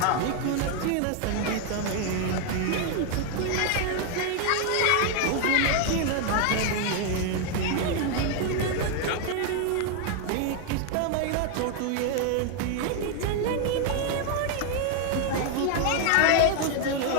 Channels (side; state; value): both; different; correlation 0.00